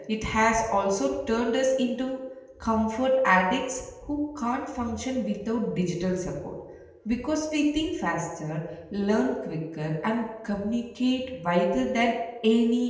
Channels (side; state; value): both; identical; correlation 1.00